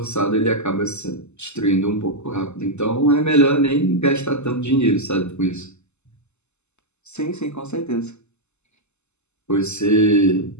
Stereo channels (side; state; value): right; late; 0.82 ms